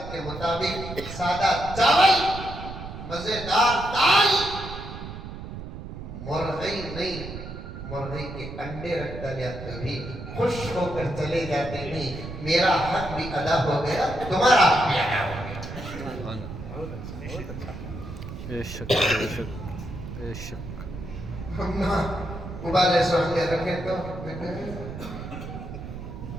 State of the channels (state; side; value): noise; right; rumble, 10 dB below the sound